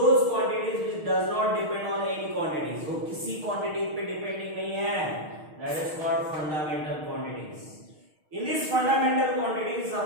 quantities which does not depend on any quantities, वो किसी क्वांटिटी पे डिपेंडिंग नहीं है, that is called fundamental quantities. In this fundamental quantities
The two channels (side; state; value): left; late; 6.5 ms